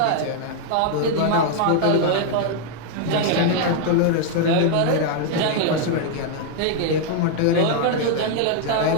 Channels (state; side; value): different; both; correlation 0.00